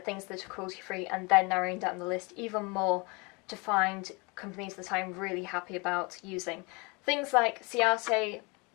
things that are cruelty-free and then narrowing down the list even more to find companies that I'm really happy about using. Things like Ciate,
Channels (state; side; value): quieter; right; 28.5 dB